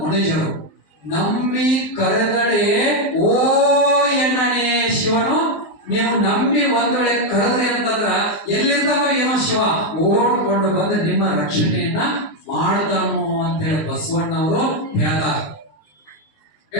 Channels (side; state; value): right; late; 19 ms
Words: ನಂಬಿ ಕರೆದಡೆ ಓ ಎಣ್ಣನೆ ಶಿವನು. ನೀವು ನಂಬಿ ಒಂದ್ ವೇಳೆ ಕರೆದ್ರಿ ಅಂತಂದ್ರ ಎಲ್ಲಿರ್ತಾವ ಏನೋ ಶಿವ ಓಡ್ಕೊಂಡು ಬಂದು ನಿಮ್ಮ ರಕ್ಷಣೆಯನ್ನ ಮಾಡ್ತಾನು ಅಂತ ಹೇಳಿ ಬಸವಣ್ಣವರು ಹೇಳ್ತಾರಲ್ಲ.